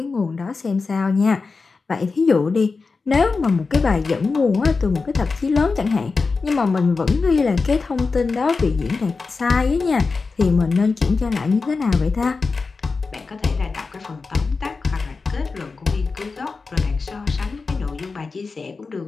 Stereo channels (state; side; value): quieter; right; 4.3 dB